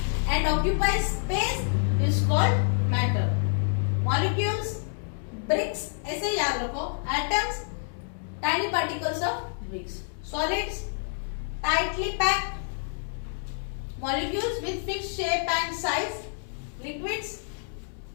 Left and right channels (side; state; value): right; silent; 59 dB below the other